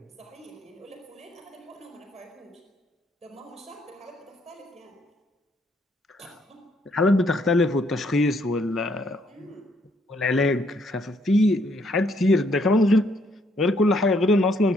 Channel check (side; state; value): both; normal; correlation 0.70